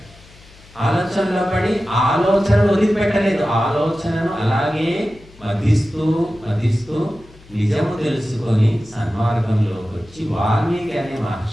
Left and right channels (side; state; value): left; noise; hum, 24 dB below the sound